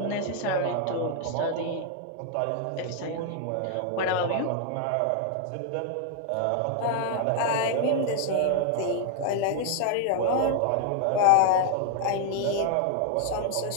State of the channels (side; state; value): both; different; correlation 0.00